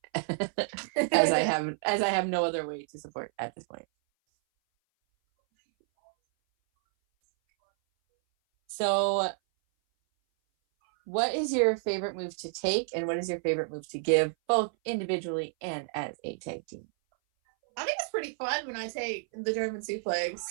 as I have no other way to support at this point. So What is your favorite move to take, and what is your favorite move to give, both individually and as a tag team? I think it's pretty fun when I take the German suplex.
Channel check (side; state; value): left; silent; 58 dB below the other